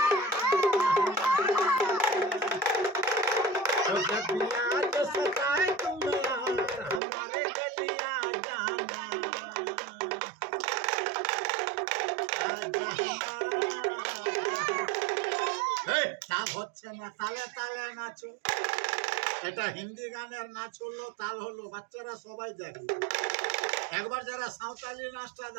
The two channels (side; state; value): left; drops out; at 7.0 s